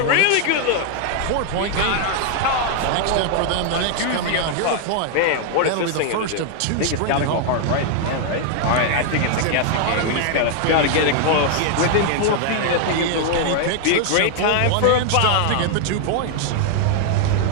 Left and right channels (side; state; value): both; different; correlation 0.00